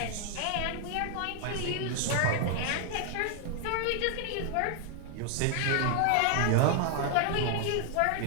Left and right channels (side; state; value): both; different; correlation 0.00